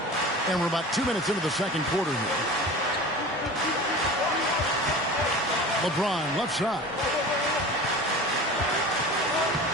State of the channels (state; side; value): normal; both; correlation 0.35